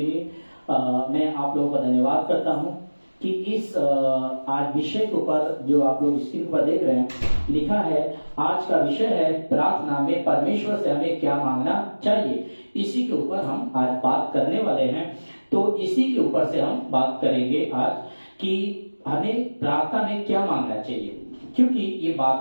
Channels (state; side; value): inverted; both; correlation -1.00